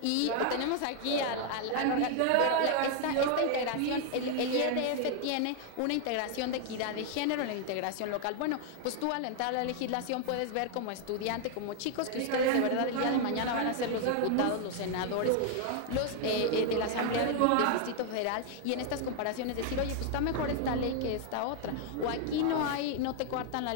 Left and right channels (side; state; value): both; different; correlation 0.00